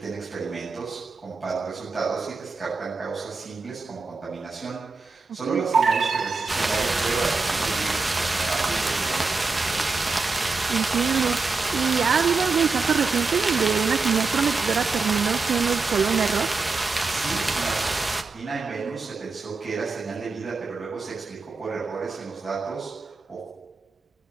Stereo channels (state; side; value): quieter; left; 4.2 dB